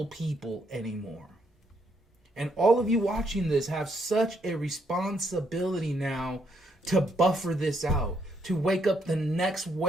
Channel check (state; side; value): normal; both; correlation 0.74